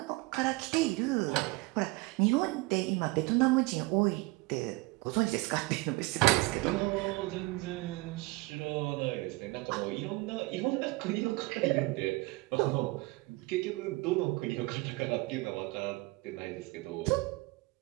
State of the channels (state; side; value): quieter; left; 22.5 dB